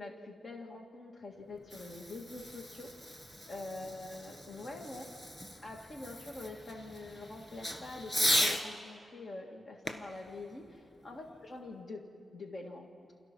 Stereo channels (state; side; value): normal; both; correlation 0.87